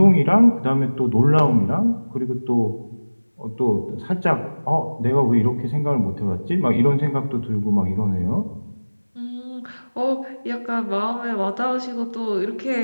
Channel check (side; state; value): both; inverted; correlation -1.00